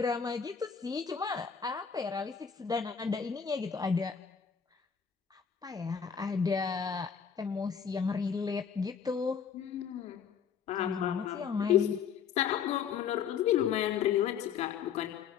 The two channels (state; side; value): quieter; right; 7.2 dB